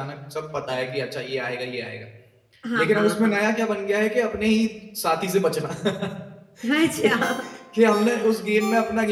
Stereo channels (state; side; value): identical; both; correlation 1.00